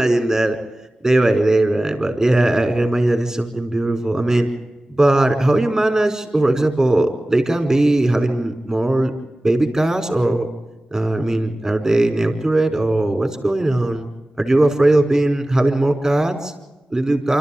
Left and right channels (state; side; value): normal; both; correlation 0.97